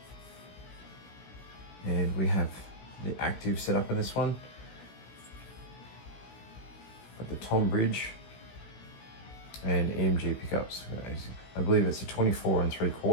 and we have the active setup in this one. Got the tom bridge and EMG pickups. I believe it's a 24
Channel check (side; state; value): right; late; 16 ms